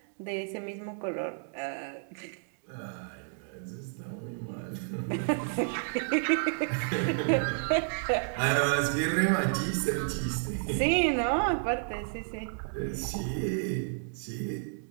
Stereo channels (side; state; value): left; silent; digital silence